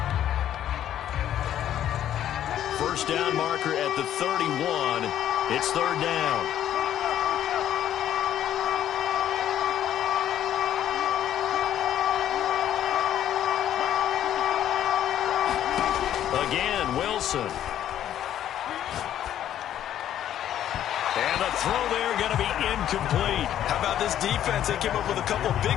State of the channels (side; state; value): right; quieter; 11.1 dB